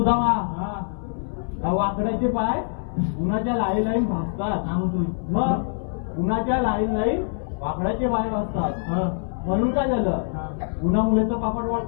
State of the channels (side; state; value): right; silent; 62 dB below the other